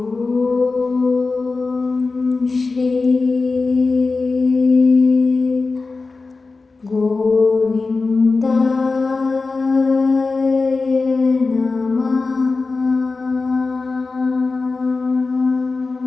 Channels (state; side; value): quieter; right; 3.9 dB